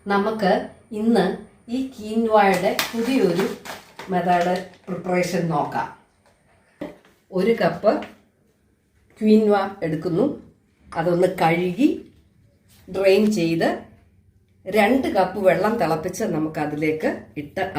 നമുക്ക് ഇന്ന് ഈ കീൻവായുടെ പുതിയൊരു മെത്തേഡ് പ്രിപ്പറേഷൻ നോക്കാം. 1 കപ്പ് ക്വീൻവ എടുക്കുന്നു. അതൊന്ന് കഴുകി ഡ്രെയിൻ ചെയ്ത് 2 കപ്പ് വെള്ളം തിളപ്പിച്ച് നമുക്ക് അതിലേക്ക് ഇട്ട്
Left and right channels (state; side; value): identical; both; correlation 1.00